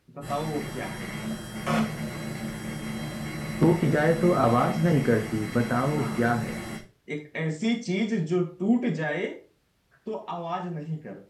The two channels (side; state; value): both; identical; correlation 1.00